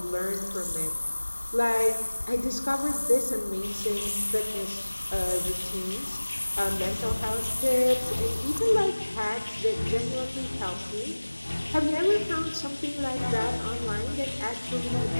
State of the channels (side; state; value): both; inverted; correlation -1.00